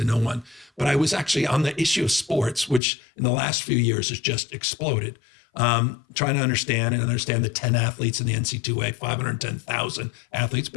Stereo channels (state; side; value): drops out; right; at 2.8 s